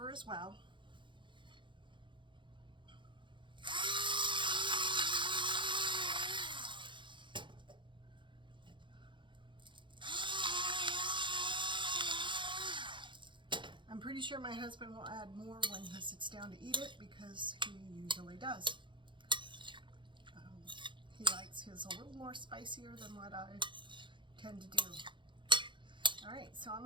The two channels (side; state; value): left; late; 0.23 ms